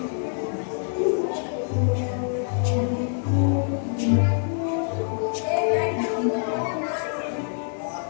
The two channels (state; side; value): silent; right; digital silence